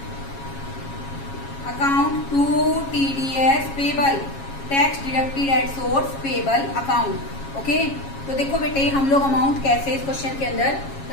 account to TDS payable, tax deducted at source payable account. Okay, तो देखो बेटे हम लोग अमाउंट कैसे इस क्वेश्चन के अंदर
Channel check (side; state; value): right; late; 7.3 ms